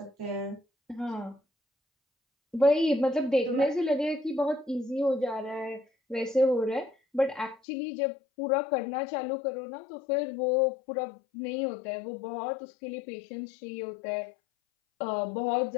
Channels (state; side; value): drops out; right; at 7.6 s